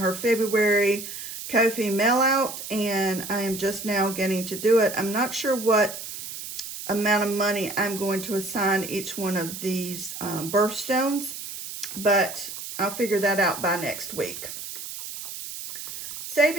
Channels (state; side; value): noise; right; hiss, 9 dB below the sound